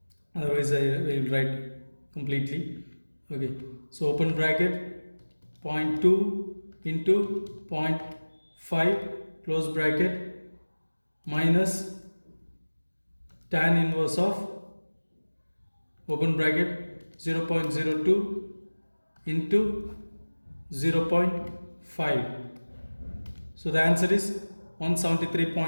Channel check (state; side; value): inverted; both; correlation -1.00